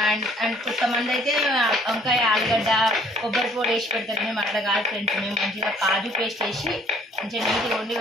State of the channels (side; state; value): both; normal; correlation 0.59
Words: అండ్ కొంతమంది అయితే వంకాయ ఆలుగడ్డ కొబ్బరి పొడి వేసి పెడతారు. మేము అట్లా కాదు ఫ్రెండ్స్, మేము మంచిగా కాజు పేస్ట్ వేసి మంచిగా నీట్గా వండి